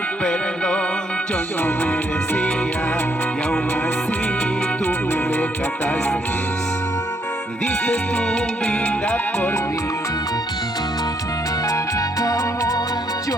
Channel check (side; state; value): both; normal; correlation 0.73